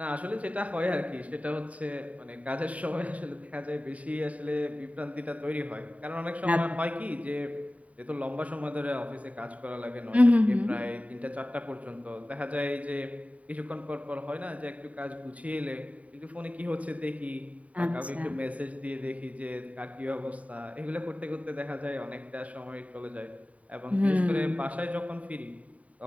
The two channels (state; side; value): late; left; 0.068 ms